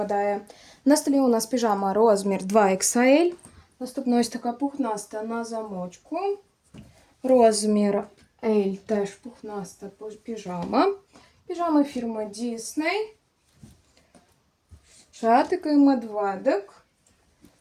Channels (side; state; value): both; identical; correlation 1.00